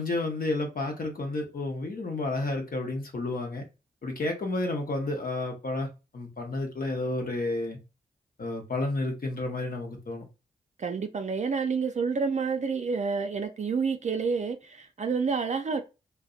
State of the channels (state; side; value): normal; both; correlation 0.61